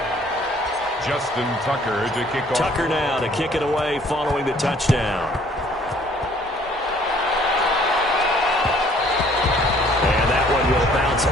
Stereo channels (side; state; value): both; normal; correlation 0.59